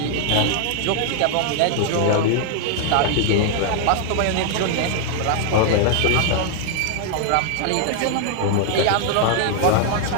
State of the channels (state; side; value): different; both; correlation 0.00